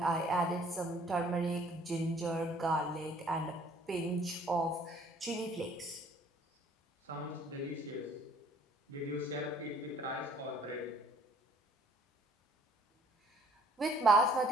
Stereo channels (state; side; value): normal; both; correlation 0.58